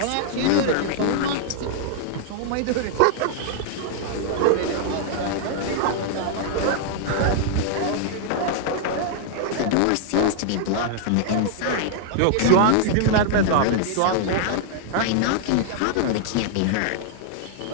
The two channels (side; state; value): both; different; correlation -0.01